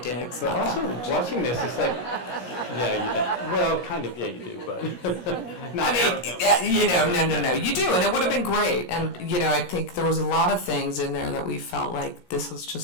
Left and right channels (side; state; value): right; late; 17 ms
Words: Diggs? But also watching this, it's like, you do. Well, kind of, you do, but I mean, no. You do, and it would have been great. And, I think there was a lot of things in there that we felt like this was